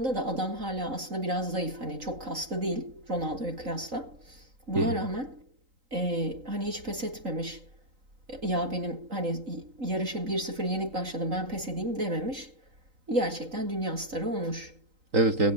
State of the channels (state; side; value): late; left; 3.8 ms